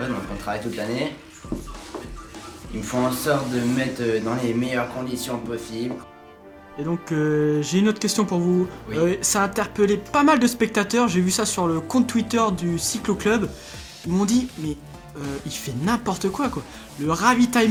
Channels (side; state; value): both; identical; correlation 1.00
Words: donc on travaille toute l'année. Ils me font en sorte de me mettre dans les meilleures conditions possibles. Et donc, j'ai une autre question pour vous. Oui. Ça a interpellé pas mal de spectateurs. J'ai vu ça sur le compte Twitter du Cyclo Club. Ils m'ont dit, mais il fait n'importe quoi. Le